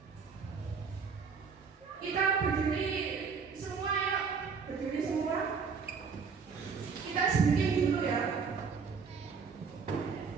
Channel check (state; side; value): quieter; left; 5.6 dB